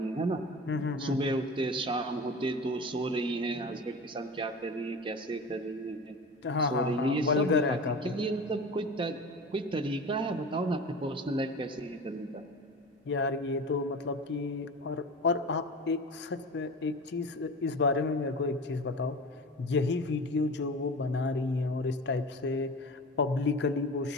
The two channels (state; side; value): normal; both; correlation 0.33